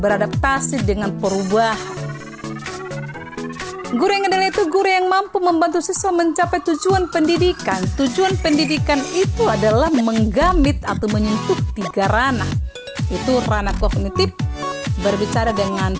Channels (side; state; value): both; identical; correlation 1.00